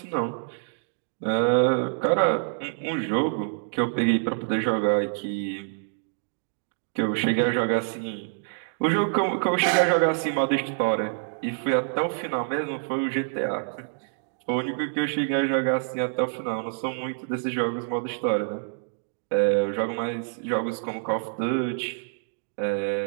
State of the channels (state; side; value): silent; left; digital silence